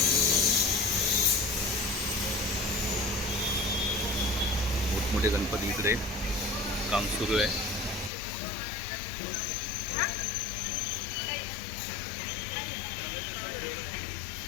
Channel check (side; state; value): right; drops out; at 8.1 s